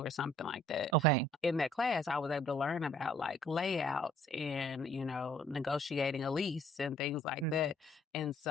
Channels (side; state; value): both; normal; correlation 0.60